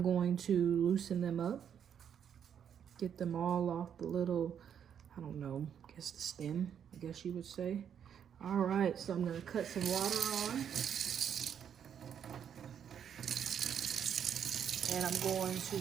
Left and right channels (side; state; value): left; quieter; 8.5 dB